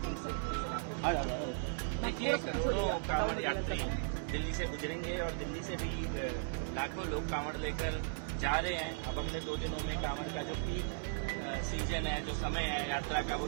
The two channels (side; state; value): left; silent; digital silence